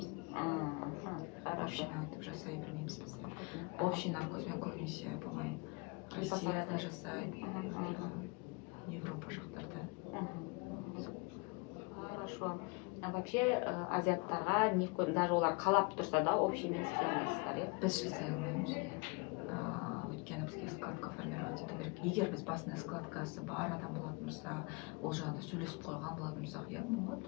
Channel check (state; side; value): quieter; right; 29.8 dB